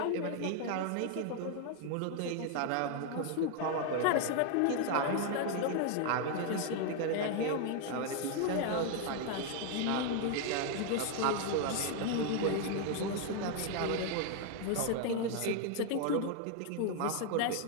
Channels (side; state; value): both; different; correlation 0.00